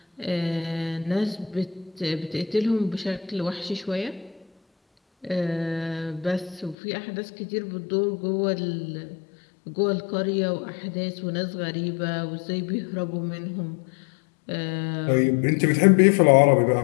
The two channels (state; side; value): drops out; right; at 6.8 s